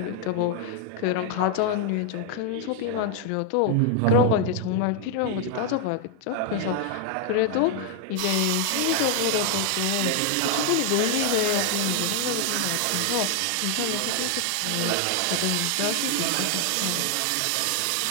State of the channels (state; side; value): different; both; correlation 0.00